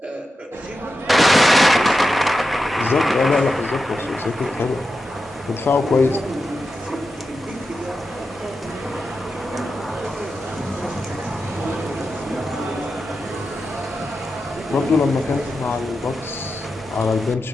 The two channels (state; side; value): normal; both; correlation 0.90